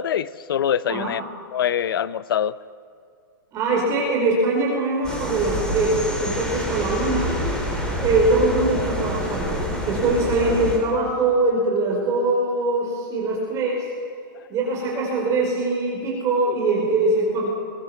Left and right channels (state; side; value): normal; both; correlation 0.00